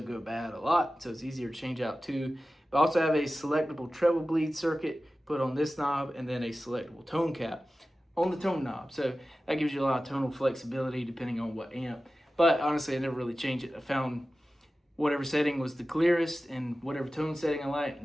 go bad a lot, so it's easier to change out too. But I also have a selectable treble bleed circuit put on this knob, and then a selectable tone cap on the tone knob. So that gives you a lot of tonal flexibility depending on what amp. But honestly, I never really changed it. I found whatever setting was the clearest and whatever tone setting I liked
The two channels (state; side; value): normal; both; correlation 0.95